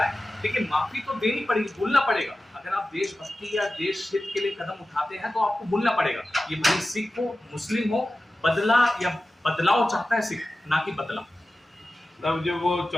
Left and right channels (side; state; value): both; normal; correlation 0.94